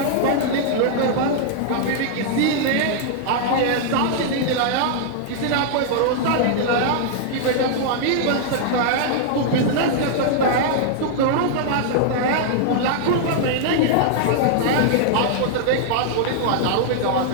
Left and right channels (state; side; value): different; both; correlation -0.01